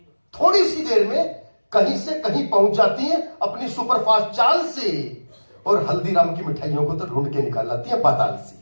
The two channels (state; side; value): inverted; both; correlation -1.00